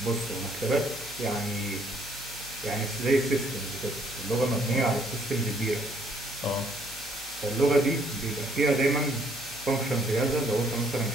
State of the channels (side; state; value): both; normal; correlation 0.65